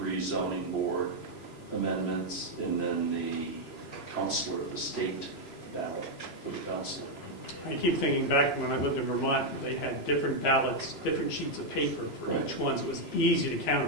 zoning board amendments, and then the counselor, the state ballot for the counselor. I keep thinking back when I lived in Vermont, they had different ballots, different sheets of paper for Right. each one, so it was easy to count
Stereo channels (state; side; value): late; right; 3.0 ms